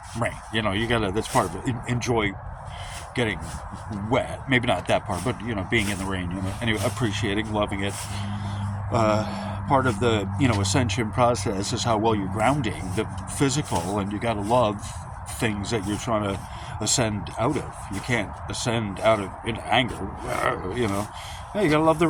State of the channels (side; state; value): both; identical; correlation 1.00